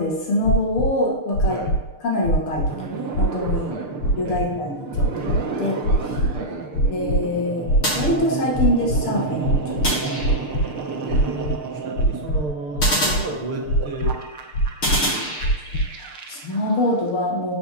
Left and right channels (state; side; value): late; right; 6.7 ms